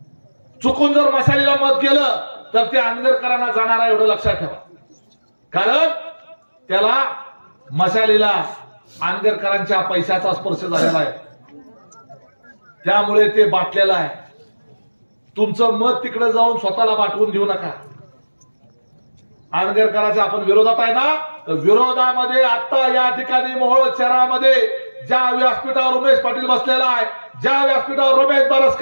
चुकून जर मशालीला मत गेलं तर ते आंबेडकरांना जाणार आहे एवढं लक्षात ठेवा। कारण त्याला मशालीला आंबेडकरांच्या पैशाचा स्पर्श झालेला आहे, त्यामुळे ते बाटलेलं आहे। तुमचं मत तिकडे जाऊन स्वतःला बाटवून घेऊ नका। आंबेडकरांच्या आपण विरोधात आहे ना, तर विरोधामध्ये आता या ठिकाणी मोहोळ शहरामध्ये ज्या व्यासपीठावर उमेश पाटील बसलेला आहे, ज्या व्यासपीठावर रमेश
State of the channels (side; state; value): both; inverted; correlation -1.00